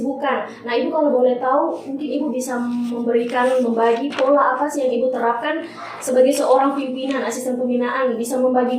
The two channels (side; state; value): both; identical; correlation 1.00